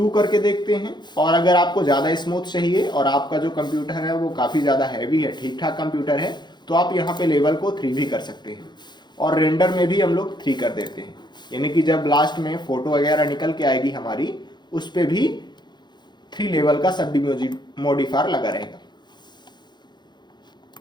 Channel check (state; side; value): late; right; 0.21 ms